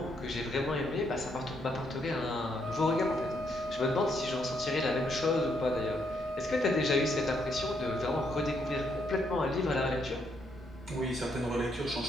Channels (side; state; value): both; normal; correlation 0.75